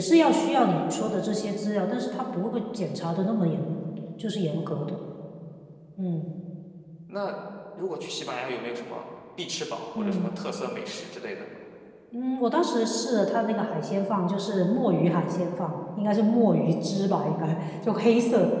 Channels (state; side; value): identical; both; correlation 1.00